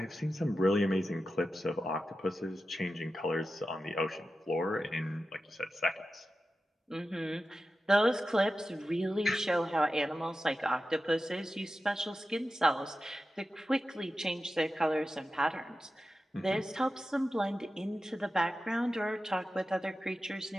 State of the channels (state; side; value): normal; both; correlation 0.92